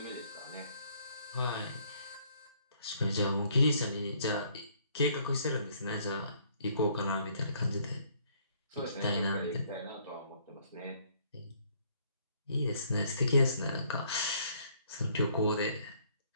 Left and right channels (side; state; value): both; inverted; correlation -0.64